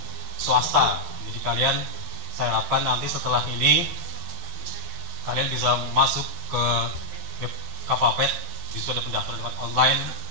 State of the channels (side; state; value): left; late; 11 ms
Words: swasta. Jadi kalian, saya harapkan nanti setelah ini kalian bisa masuk ke web Kavapet, di situ ada pendaftaran lewat online.